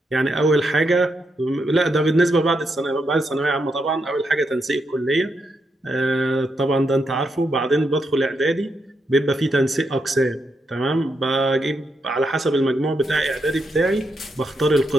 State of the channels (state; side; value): normal; both; correlation 0.82